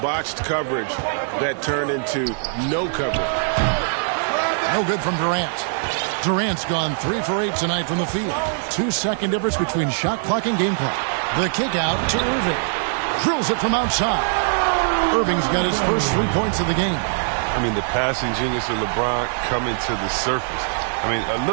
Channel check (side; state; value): left; silent; digital silence